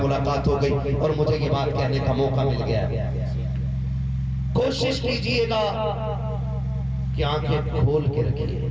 ملاقات ہو گئی اور مجھے یہ بات کہنے کا موقع مل گیا. کوشش کیجئے گا کہ آنکھیں کھول کے رکھیے.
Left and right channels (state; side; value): identical; both; correlation 1.00